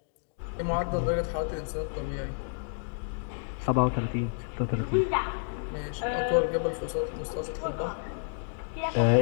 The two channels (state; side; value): silent; right; digital silence